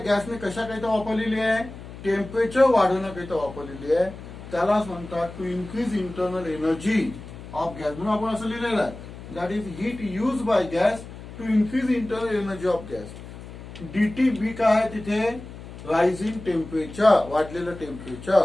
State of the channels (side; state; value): left; noise; hum, 14 dB below the sound